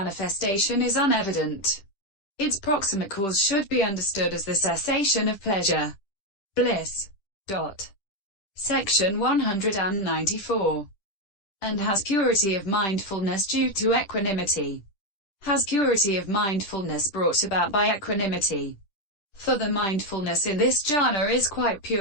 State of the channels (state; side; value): late; right; 10 ms